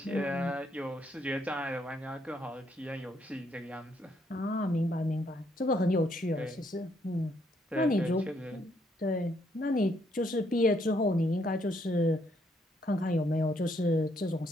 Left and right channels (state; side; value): normal; both; correlation 0.72